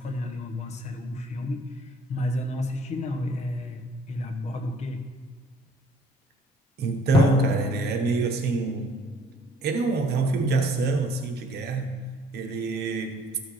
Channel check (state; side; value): normal; both; correlation 0.58